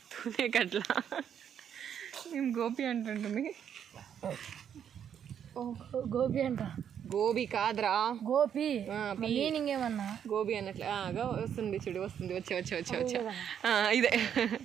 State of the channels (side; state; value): left; quieter; 8.7 dB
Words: తునేకట్ల మేము గోపి అంటుంటుంది. గోపి అంట, గోబీ కాదురా గోపి. మీనింగ్ ఏమన్నా గోబీ అన్నట్లు వస్తుంది చూడు, వస్తుంది. వచ్చా ఇదే